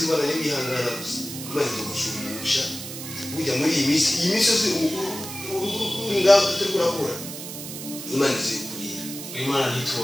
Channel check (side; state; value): right; noise; hiss, 9 dB below the sound